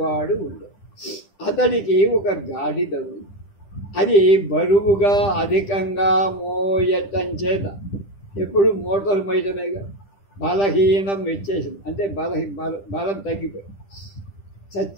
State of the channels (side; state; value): right; late; 10 ms